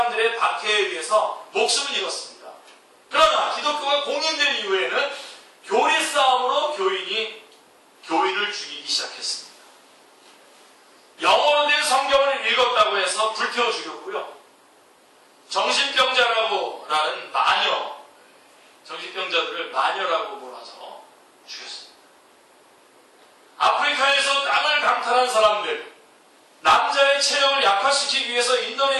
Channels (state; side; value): identical; both; correlation 1.00